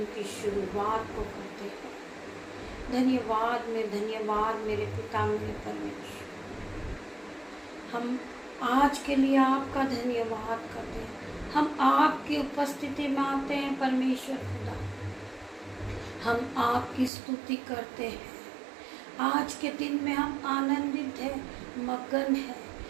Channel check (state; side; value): drops out; left; at 17.1 s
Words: की शुरुआत को करते हैं। धन्यवाद मेरे पिता मेरे परमेश्वर। हम आज के लिए आपका धन्यवाद करते हैं। हम आपकी उपस्थिति में आते हैं परमेश्वर खुदा। हम आपकी स्तुति करते हैं। आज के दिन में हम आनंदित हैं, मगन हैं